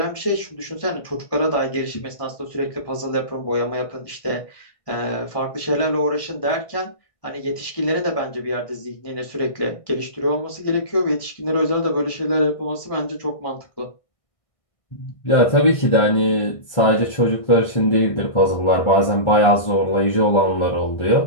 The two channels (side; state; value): right; late; 1.6 ms